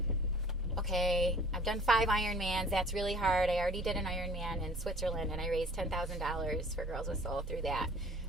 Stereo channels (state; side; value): normal; both; correlation 0.50